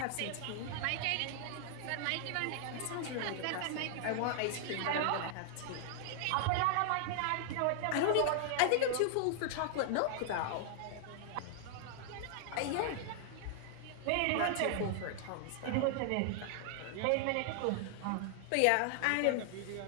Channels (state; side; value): different; both; correlation 0.00